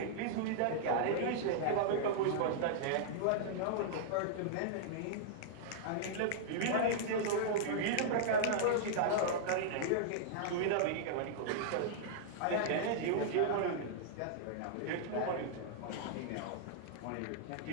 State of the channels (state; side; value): different; both; correlation -0.02